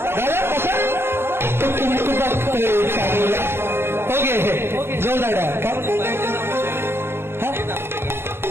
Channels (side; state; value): left; late; 0.11 ms